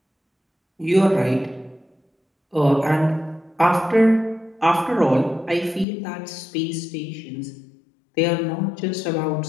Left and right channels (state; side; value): drops out; right; at 5.9 s